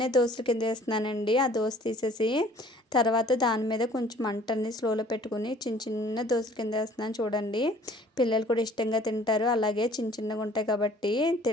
దోశల కింద వేస్తున్నానండి. ఆ దోశ తీసేసి తర్వాత దాని మీద కొంచెం మంటని స్లోలో పెట్టుకుని చిన్న దోశల కింద వేస్తున్నాను చూడండి. పిల్లలు కూడా ఇష్టంగా తింటారు, అలాగే చిన్నగా ఉంటాయి కాబట్టి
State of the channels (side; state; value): both; normal; correlation 0.54